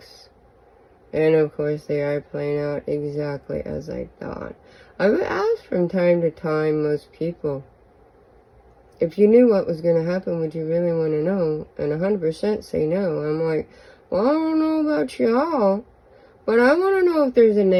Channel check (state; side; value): identical; both; correlation 1.00